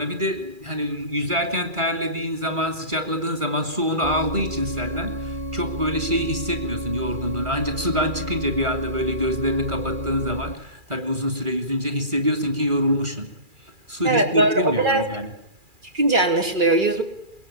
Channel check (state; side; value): late; left; 2.4 ms